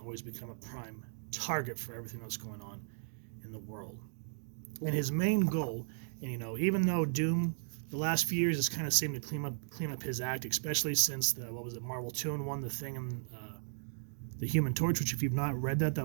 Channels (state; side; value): silent; left; digital silence